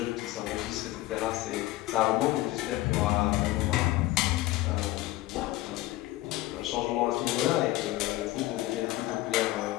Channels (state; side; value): quieter; right; 17.4 dB